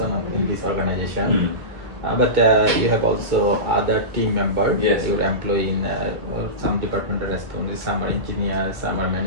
in this organization. But you have also other team members. Yes. Your employee in some departmental responsibilities, some are engineers, some are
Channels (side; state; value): left; late; 2.2 ms